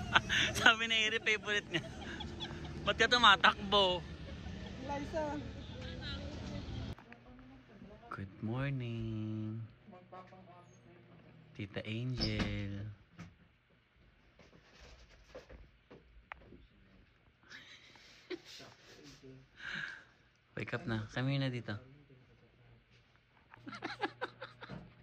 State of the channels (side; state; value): both; identical; correlation 1.00